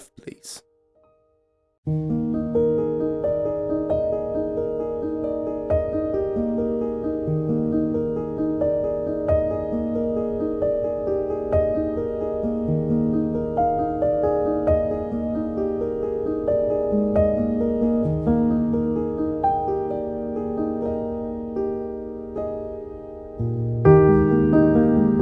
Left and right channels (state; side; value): identical; both; correlation 1.00